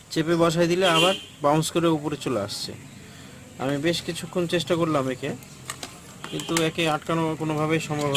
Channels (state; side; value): identical; both; correlation 1.00